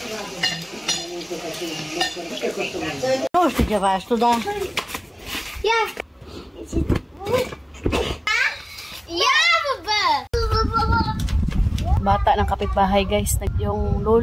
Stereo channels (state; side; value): identical; both; correlation 1.00